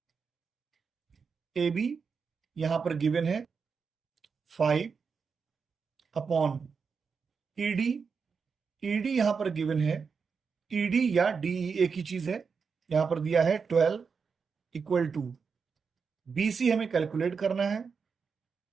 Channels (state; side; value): quieter; left; 5.6 dB